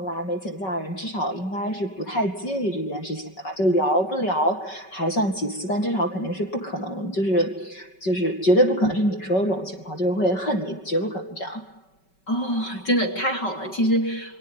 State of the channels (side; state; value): right; late; 5.3 ms